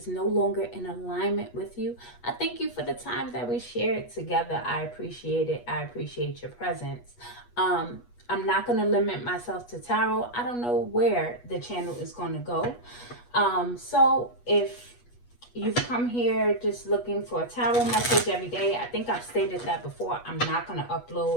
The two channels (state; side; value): late; right; 8.3 ms